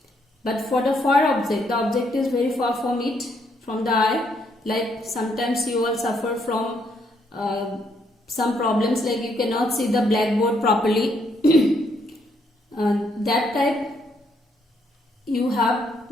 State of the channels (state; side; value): normal; both; correlation 0.73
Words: But for the far object, the object is very far from it, from the eye. Like sometimes you all suffer from some problems, like you cannot see the blackboard properly. That type you have